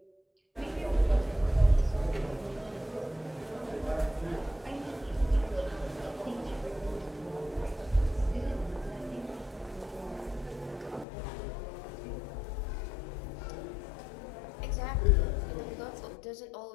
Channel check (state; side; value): drops out; right; at 11.1 s